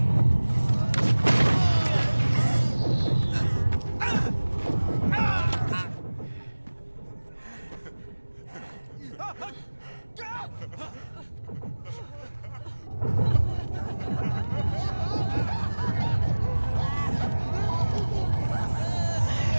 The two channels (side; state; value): both; inverted; correlation -1.00